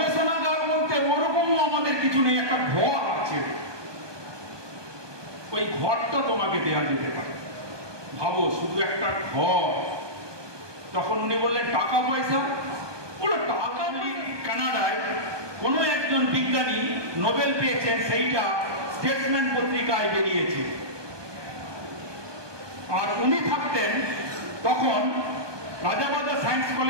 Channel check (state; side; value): late; left; 1.2 ms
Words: বলতে ওরকমও আমাদের কিছু নেই, একটা ঘর আছে, ওই ঘরটা তোমাকে দেওয়া যেতে পারে। ভাবো শুধু একটা ঘর। তখন উনি বললেন টাকা পয়সা, বলে টাকা কানাডায় কোনো একজন বিজ্ঞানী নোবেল পেয়েছেন, সেইটা স্টেটসম্যান পত্রিকায় বেরিয়েছে। আর উনি থাকতেন তখন রাজাবাজার সায়েন্স